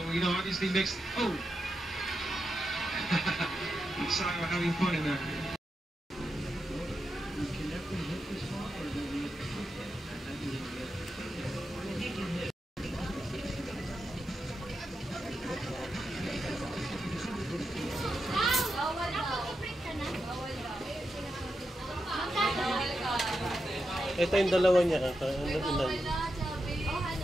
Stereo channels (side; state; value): both; normal; correlation 0.87